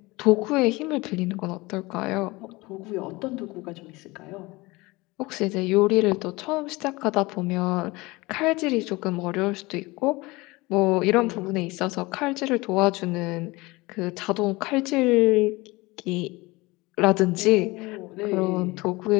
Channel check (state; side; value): quieter; right; 22.5 dB